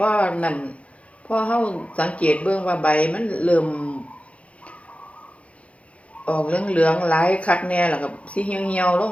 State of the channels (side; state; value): right; late; 0.063 ms